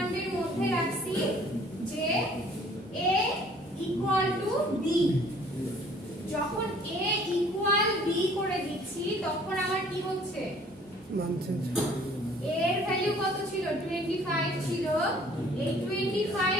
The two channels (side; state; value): both; normal; correlation 0.55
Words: মধ্যে রাখছি যে a ইকুয়াল টু b। যখন a ইকুয়াল b করে দিচ্ছি তখন আমার কি হচ্ছে? মান চেঞ্জ। a এর ভ্যালু কত ছিল? 25 ছিল। এই